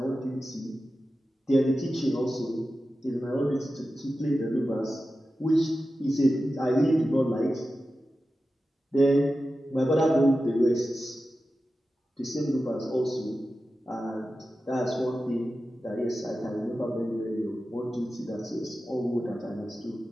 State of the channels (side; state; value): both; normal; correlation 0.93